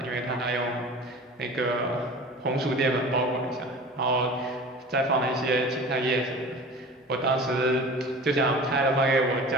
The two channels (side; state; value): both; normal; correlation 0.39